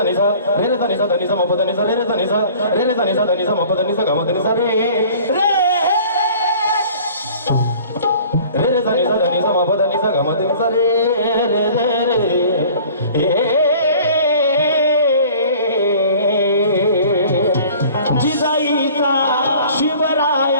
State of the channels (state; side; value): inverted; both; correlation -0.48